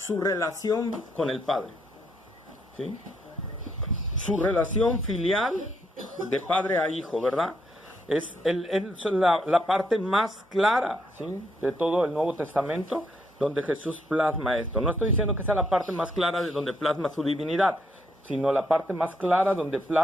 relación con el Padre, ¿sí? Su relación filial de padre a hijo, ¿verdad? Es la parte más clara, ¿sí?, de todo el Nuevo Testamento, donde Jesús plasma esto. No estoy diciendo que sea la parte más clara de donde plasma su divinidad, sino la parte más clara donde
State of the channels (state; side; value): normal; both; correlation 0.75